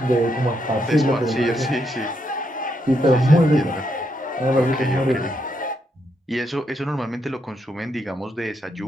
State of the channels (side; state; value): both; normal; correlation 0.79